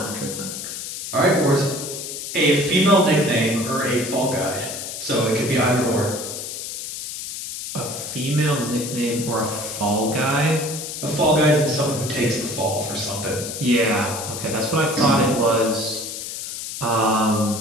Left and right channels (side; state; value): left; noise; hiss, 7 dB below the sound